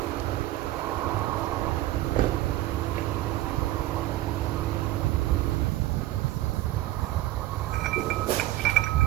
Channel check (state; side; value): quieter; left; 15.8 dB